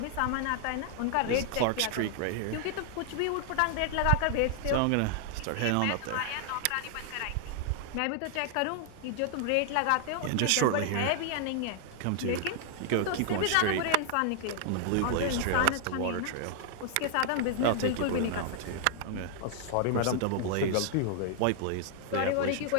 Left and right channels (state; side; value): different; both; correlation 0.00